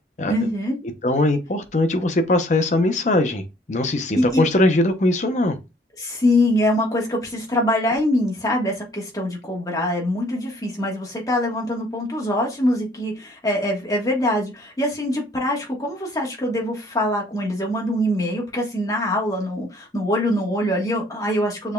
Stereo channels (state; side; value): normal; both; correlation 0.59